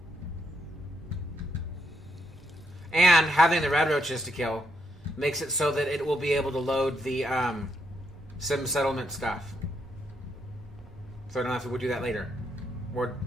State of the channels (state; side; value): normal; both; correlation 0.77